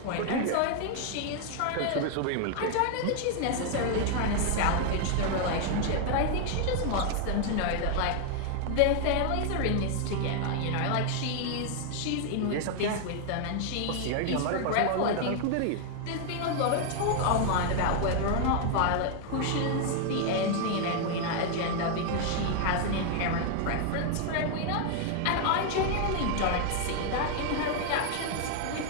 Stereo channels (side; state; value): both; different; correlation 0.00